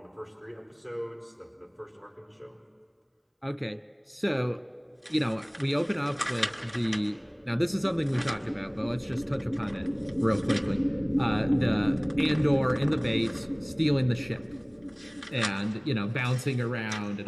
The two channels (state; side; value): identical; both; correlation 1.00